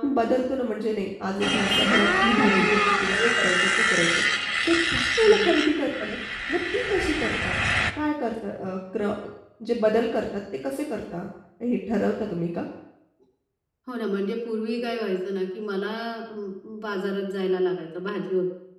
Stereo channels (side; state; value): both; identical; correlation 1.00